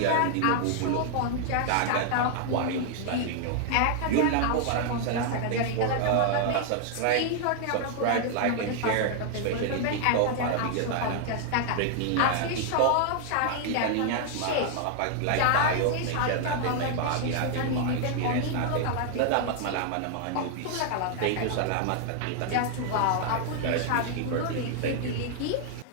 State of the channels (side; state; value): both; different; correlation 0.00